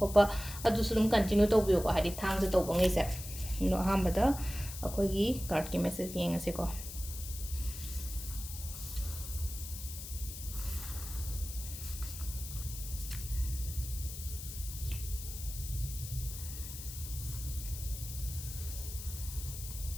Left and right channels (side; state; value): left; noise; hiss, 10 dB below the sound